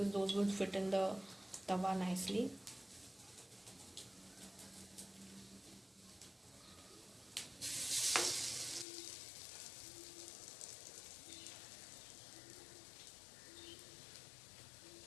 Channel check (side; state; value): right; drops out; at 8.8 s